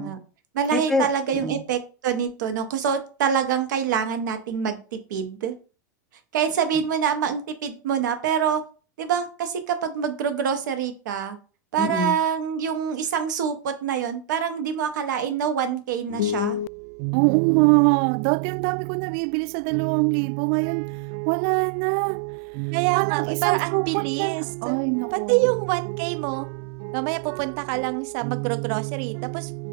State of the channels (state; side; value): drops out; left; at 16.7 s